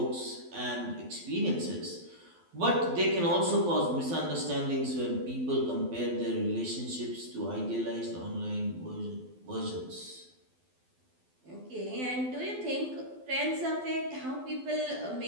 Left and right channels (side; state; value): left; late; 12 ms